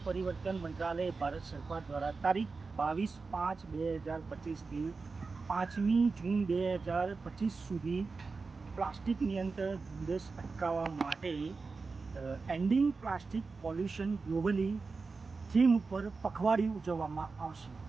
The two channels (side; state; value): left; quieter; 4.3 dB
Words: પરિવર્તન મંત્રાલય ભારત સરકાર દ્વારા તારીખ 22/5/2025થી 5મી જૂન 2025 સુધી પ્લાસ્ટિક નિયંત્રણ ઝુંબેશ અટકાવવા માટે ending plastic pollution globally theme ઉપર પખવાડિયું ઉજવવામાં આવશે,